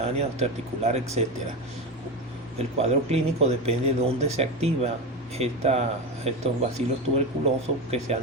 osteoarticular, etc. El cuadro clínico depende de dónde se activa estos bacilos tuberculosos que se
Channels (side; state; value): both; normal; correlation 0.19